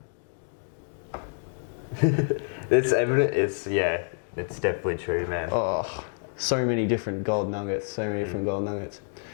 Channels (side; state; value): right; silent; digital silence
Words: It's evident. It's definitely true, man. Oh, so many different gold nuggets.